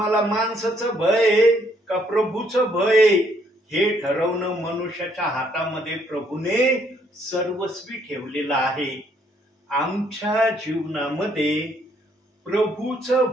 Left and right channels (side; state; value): both; normal; correlation 0.68